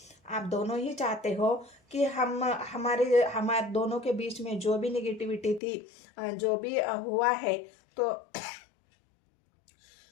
आप दोनों ही चाहते हो कि हमारे दोनों के बीच में जो भी निगेटिविटी थी, जो भी हुआ है, तो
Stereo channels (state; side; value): drops out; right; at 5.6 s